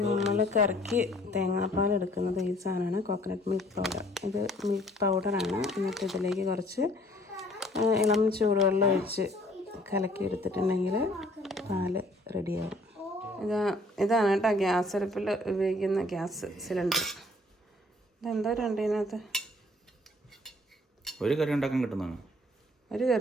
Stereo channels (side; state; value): both; normal; correlation 0.59